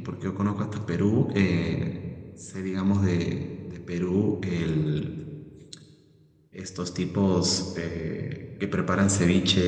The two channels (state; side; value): identical; both; correlation 1.00